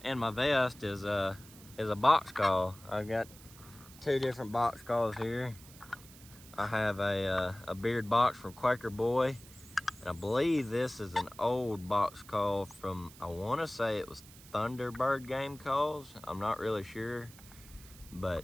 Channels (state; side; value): noise; right; hiss, 20 dB below the sound